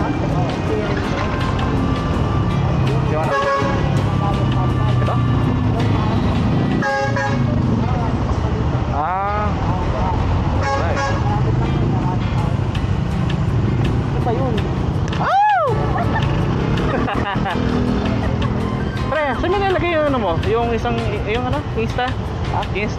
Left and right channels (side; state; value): both; identical; correlation 1.00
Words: Pre, saan mo nilagay yung ano mo? Yung isang, yung ano? Insta? Ha?